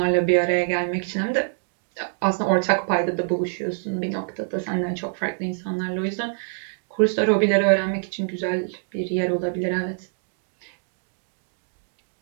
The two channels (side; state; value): left; silent; digital silence